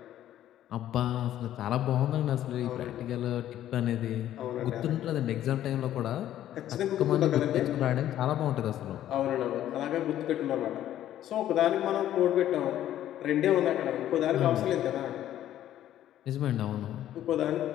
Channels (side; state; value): right; quieter; 12.2 dB